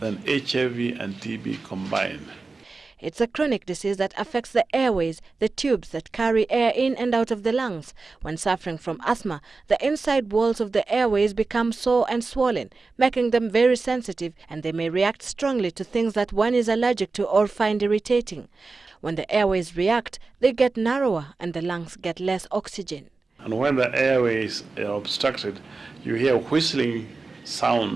than HIV and TB combined. It's a chronic disease that affects the airways, the tubes that carry air in and out of the lungs. When suffering from asthma, the inside walls of the airways become sore and swollen, making them very sensitive, and they may react strongly to things that one is allergic to or find irritating. When the airways react, they get narrower and the lungs get less oxygen. And when the airways are obstructed, you hear whistling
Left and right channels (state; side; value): quieter; left; 3.9 dB